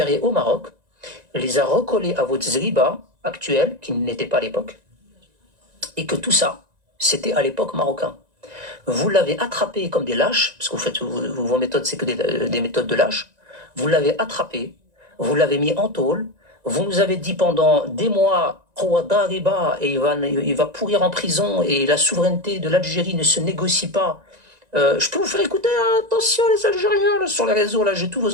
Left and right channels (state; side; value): late; left; 1.9 ms